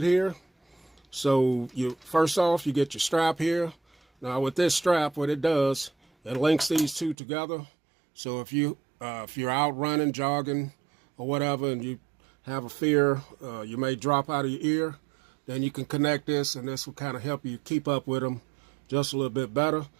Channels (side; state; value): left; drops out; at 7.2 s